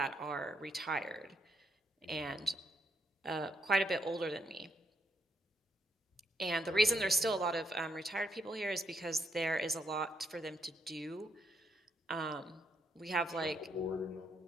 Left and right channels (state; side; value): normal; both; correlation 0.76